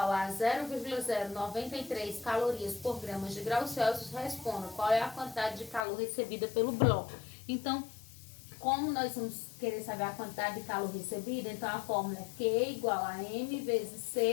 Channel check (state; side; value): drops out; right; at 5.9 s